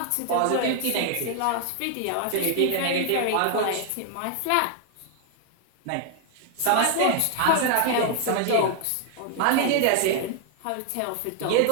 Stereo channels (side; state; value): both; different; correlation 0.00